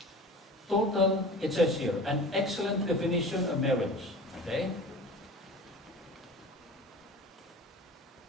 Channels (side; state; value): both; normal; correlation 0.37